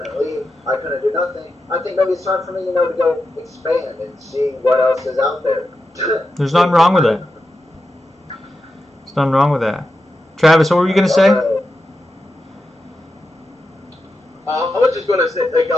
leave. I couldn't do nothing. I think maybe it's time for me, to go expand and see what else is out there. There's nothing wrong with it. There's nothing wrong with that. Travis, what were you going to say? I was just gonna say, like,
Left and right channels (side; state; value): both; normal; correlation 0.89